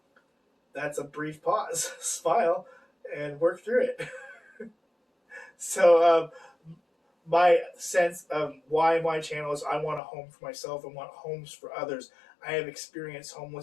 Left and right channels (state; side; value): drops out; right; at 10.0 s